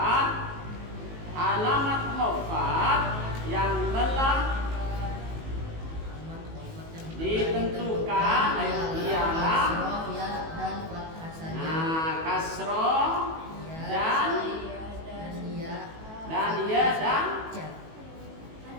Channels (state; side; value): late; left; 18 ms